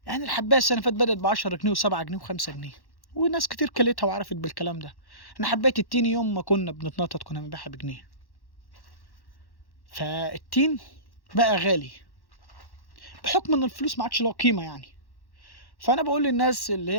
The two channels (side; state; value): right; late; 1.1 ms